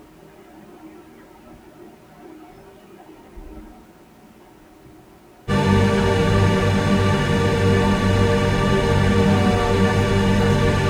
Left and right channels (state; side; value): identical; both; correlation 1.00